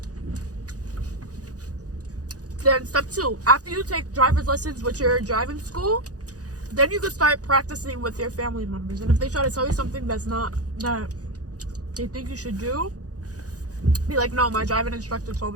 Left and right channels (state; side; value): late; left; 0.67 ms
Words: Then step 2, after you take driver's lessons with your driving school, then you can start practicing with your family members. And if they try to tell you something that's not that they think you should do, be like, no, my driving instructor told